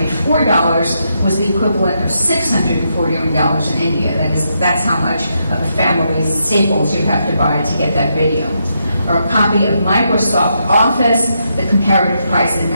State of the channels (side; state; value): both; inverted; correlation -0.81